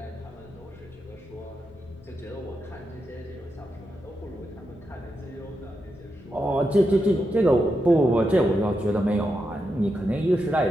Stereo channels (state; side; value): normal; both; correlation 0.86